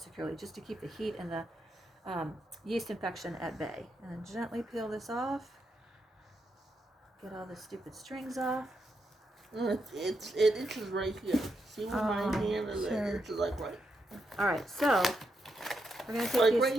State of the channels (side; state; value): both; normal; correlation 0.82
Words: securely, just to keep the heat and the yeast infection at bay. And then gently peel this off. Get all the stupid strings off. It itches right here. See where my hand is? Sure. It itches like right. All right, so we're gonna take Like these.